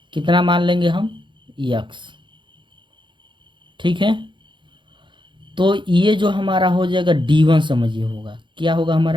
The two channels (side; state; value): left; late; 0.23 ms